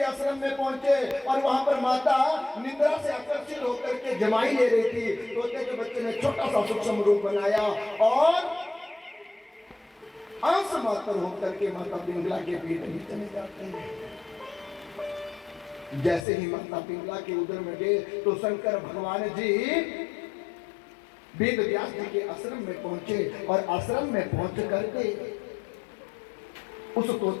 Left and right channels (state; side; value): drops out; right; at 16.2 s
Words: आश्रम में पहुंचे और वहां पर माता निद्रा से आकर्षित होकर के जमाई ले रही थी। तोते के बच्चे ने छोटा सा सूक्ष्म रूप बनाया और अंश मात्र होकर के माता पिंगला के पेट में चले जाते हैं। जैसे ही माता पिंगला के उदर में गए तो शंकर भगवान जी वेद व्यास जी के आश्रम में पहुंचे और आश्रम में पहुंच करके उस